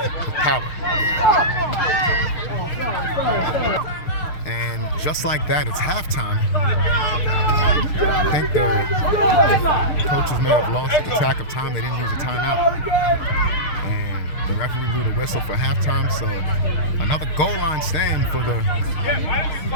with power. And just like that, it's halftime. I think the coaches may have lost the track of time. They didn't use a timeout. And the referee blew the whistle for halftime. So another goal line stand for the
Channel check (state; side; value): late; right; 6.6 ms